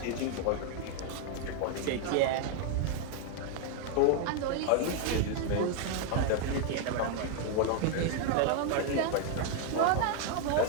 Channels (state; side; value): different; both; correlation 0.00